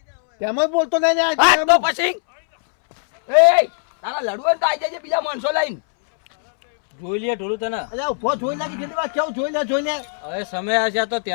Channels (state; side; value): silent; right; 66 dB below the other